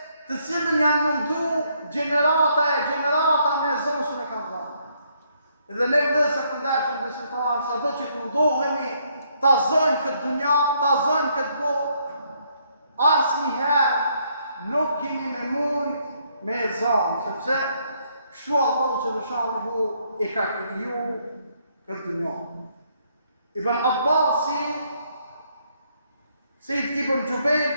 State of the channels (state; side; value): inverted; both; correlation -0.71